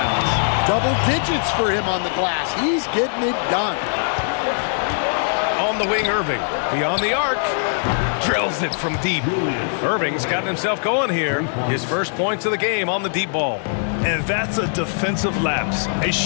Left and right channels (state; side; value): silent; right; 60 dB below the other